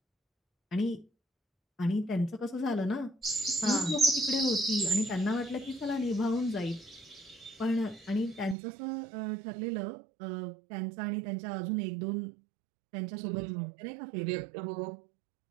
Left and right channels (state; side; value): drops out; left; at 8.6 s